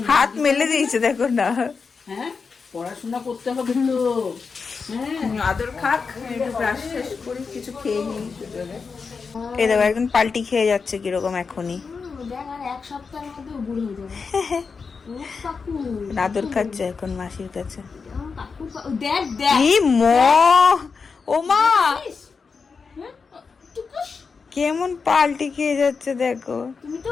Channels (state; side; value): quieter; right; 5.1 dB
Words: হাত মেলে দিয়েছে, দেখো না। হ্যাঁ, পড়াশোনা করতে হবে তো। আদর খাক, একটু ব্রাশ শেষ করি, কিছু খেয়ে নিই। এই দেখো একদম পাল্টি খেয়ে যাচ্ছে কিরকম এখনই। এক সপ্তাহের মধ্যে বুড়ো হয়ে যাবে। আদর খাচ্ছে এখন মাসির কাছে। ও মা, কেমন পাল্টি খেয়ে যাচ্ছে দেখো। তুমি তো